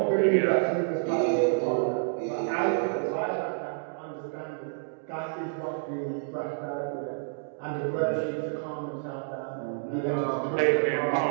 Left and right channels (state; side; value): silent; left; digital silence